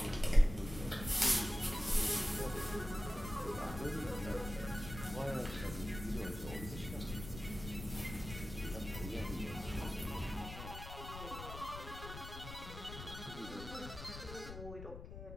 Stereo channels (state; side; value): noise; left; rumble, 10 dB below the sound